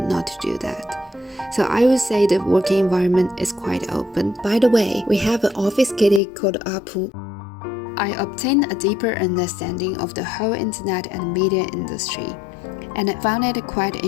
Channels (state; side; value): drops out; right; at 6.2 s